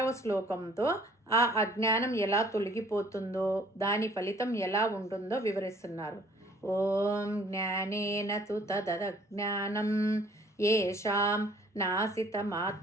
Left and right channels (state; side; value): normal; both; correlation 0.57